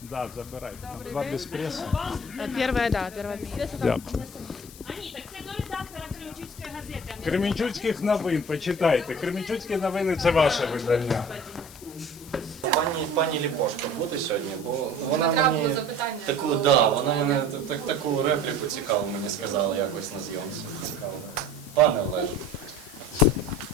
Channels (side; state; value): left; noise; hiss, 18 dB below the sound